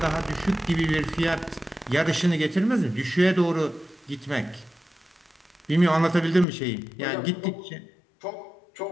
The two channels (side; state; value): right; drops out; at 6.5 s